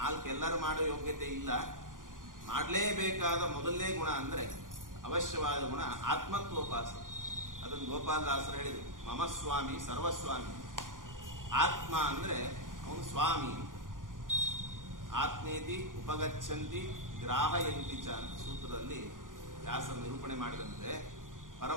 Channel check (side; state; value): left; late; 0.89 ms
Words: ಎಲ್ಲರೂ ಮಾಡೋ ಯೋಗ್ಯತೆ ಇಲ್ಲ. ಮಾಡಲೇಬೇಕಾದ ಮೊದಲನೇ ಗುಣ ಅಂದ್ರೆ ಅವಶ್ಯವಾದ ಗುಣ ಆತ್ಮತ್ವೋಪಾಸನೆ. ಅದನ್ನು ಗೋಪಾಲದಾಸರು ಹೇಳಿದರು, ಮಮ ಸ್ವಾಮಿ ಸರ್ವಸ್ವಾಮಿ. ಆತ್ಮ ಅಂದ್ರೆ ಅವನು ಸ್ವಾಮಿ. ಆತ್ಮೇತಿ ಉಪಗಚ್ಚಂತಿ ಗ್ರಾಹಯಂತಿ ಚ ಅಂತ ಸೂತ್ರದಲ್ಲಿ ವ್ಯಾಸರು ನಿರೂಪಣೆ ಮಾಡಿದಂತೆ